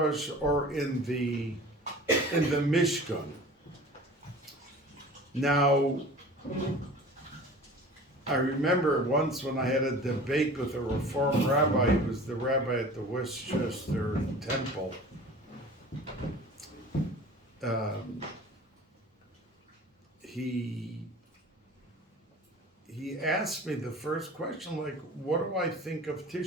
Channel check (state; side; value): normal; both; correlation 0.41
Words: or in the Mishkan. Now, I remember once when I had a debate with a Reform rabbi. He was the rabbi at the Westchester Temple. He asked me the first question, like, what do I think of